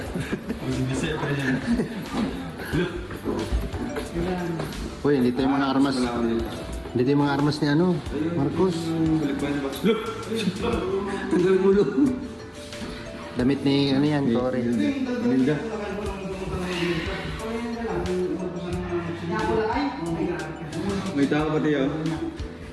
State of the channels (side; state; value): both; identical; correlation 1.00